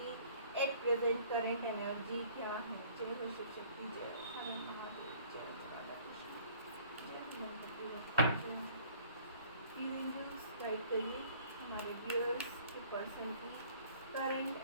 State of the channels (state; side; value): inverted; both; correlation -0.54